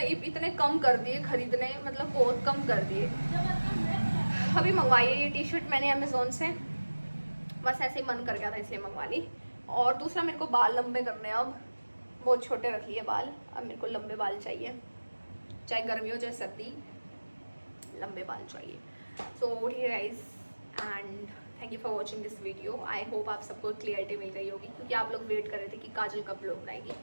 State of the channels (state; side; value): inverted; both; correlation -1.00